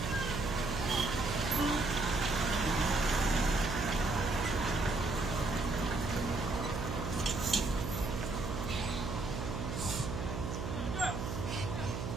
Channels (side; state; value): right; noise; hum, 4 dB below the sound